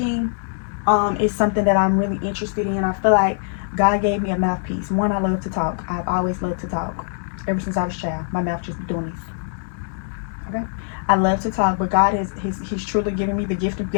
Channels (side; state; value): right; silent; digital silence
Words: is something that I'm really interested in. I feel like God gave me a mouthpiece. One, I love to talk. I've always loved to talk. Ever since I was a child, my mouth just be doing this. Okay? I love to talk, but God he's truly given me the gift of